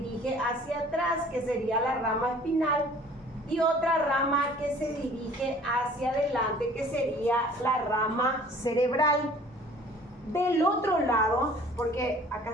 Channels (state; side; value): normal; both; correlation 0.51